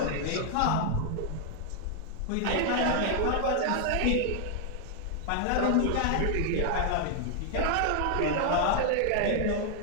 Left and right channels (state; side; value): different; both; correlation 0.00